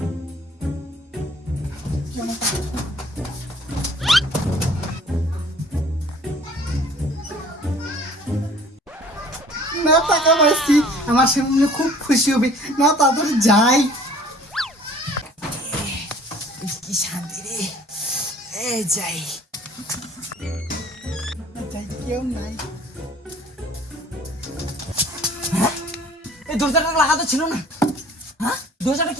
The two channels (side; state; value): both; normal; correlation 0.52